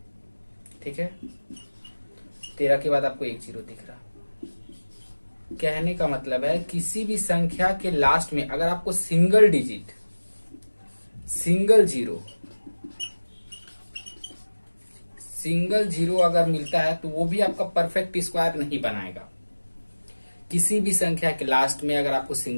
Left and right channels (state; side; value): inverted; both; correlation -1.00